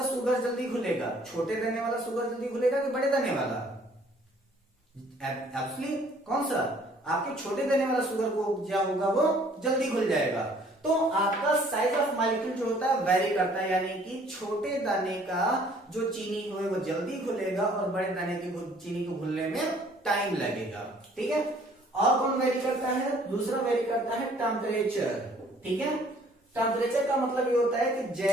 शुगर जल्दी घुलेगा, छोटे दाने वाला शुगर जल्दी घुलेगा कि बड़े दाने वाला, एक्चुअली कौन सा, आपके छोटे दाने वाला शुगर को क्या होगा वो जल्दी घुल जाएगा। तो आपका साइज ऑफ मॉलिक्यूल जो होता है वेरी करता है, यानी कि छोटे दाने का जो चीनी है वो जल्दी घुलेगा और बड़े दाने की चीनी को घुलने में टाइम लगेगा, ठीक है। और कौन वेरी करता है? दूसरा वेरी करता है टेम्परेचर। ठीक है, टेम्परेचर का मतलब ये होता है कि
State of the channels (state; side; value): normal; both; correlation 0.58